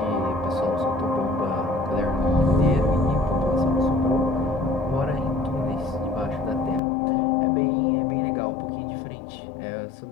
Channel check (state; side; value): drops out; right; at 6.8 s